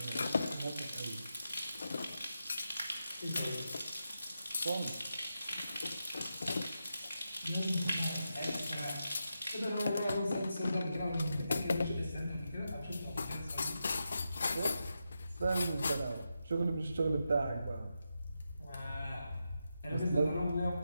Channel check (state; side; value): inverted; both; correlation -0.87